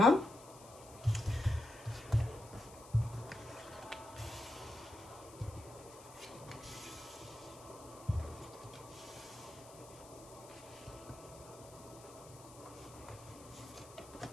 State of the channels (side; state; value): left; noise; hiss, 19 dB below the sound